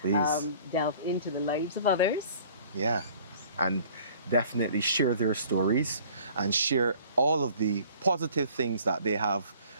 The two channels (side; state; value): both; inverted; correlation -0.52